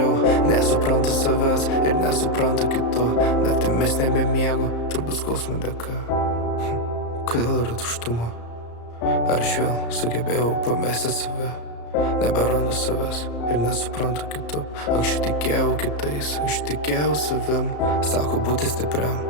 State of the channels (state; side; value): late; right; 34 ms